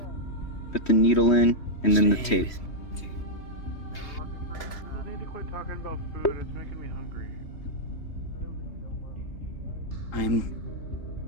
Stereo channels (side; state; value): right; late; 3.2 ms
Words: put the needle in and then the tape. I need to quit talking about food. It's making me hungry. I'm